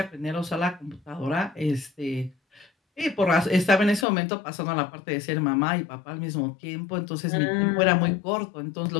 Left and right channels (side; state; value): right; drops out; at 4.0 s